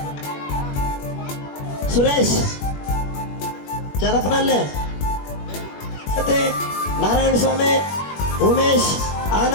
ಸುರೇಶ್ ಚರಪನಲ್ಲೆ, ಮತ್ತೆ ನಾರಾಯಣ ಸ್ವಾಮಿ, ಉಮೇಶ್,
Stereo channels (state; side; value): late; right; 21 ms